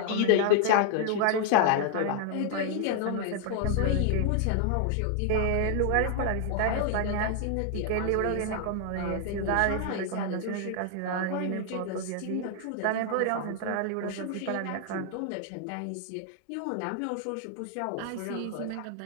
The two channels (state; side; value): different; both; correlation 0.00